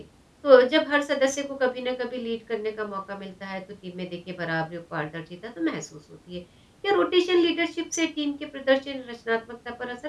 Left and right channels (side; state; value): both; identical; correlation 1.00